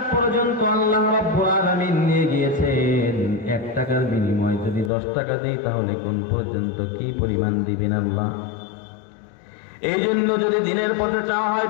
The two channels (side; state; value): right; drops out; at 4.9 s